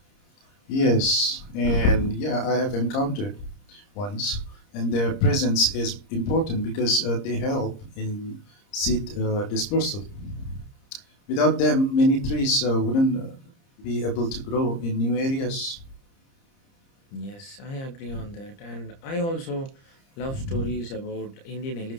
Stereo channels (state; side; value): late; right; 30 ms